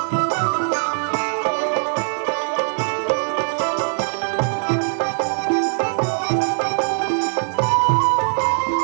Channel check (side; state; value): left; silent; digital silence